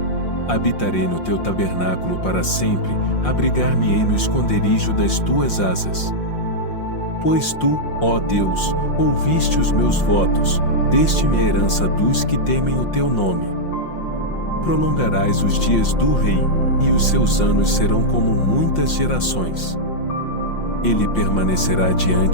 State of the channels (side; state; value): right; late; 5.7 ms